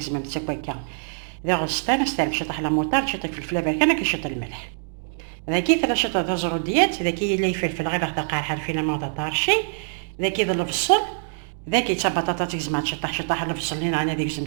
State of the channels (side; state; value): left; silent; digital silence